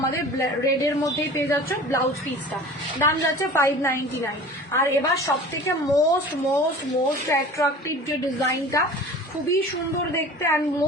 রেডের মধ্যেই পেয়ে যাচ্ছ ব্লাউজ পিসটা। দাম যাচ্ছে 599। আর এবার সবথেকে মোস্ট মোস্ট মোস্ট অ্যাট্রাকটিভ যে ডিজাইনটা, খুবই সুন্দর দেখতে এন্ড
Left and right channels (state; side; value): normal; both; correlation 0.41